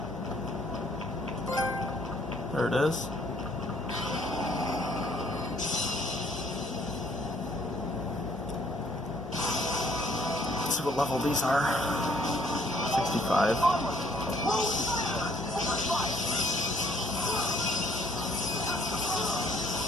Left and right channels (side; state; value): both; normal; correlation 0.63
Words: There it is. Let's see what level these are. 65.